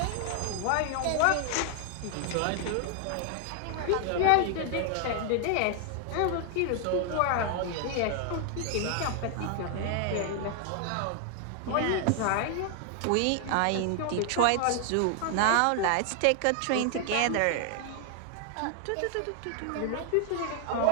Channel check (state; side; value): different; both; correlation 0.00